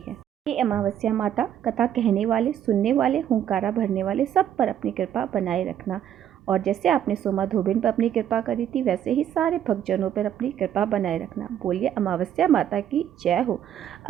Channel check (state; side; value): quieter; left; 10.2 dB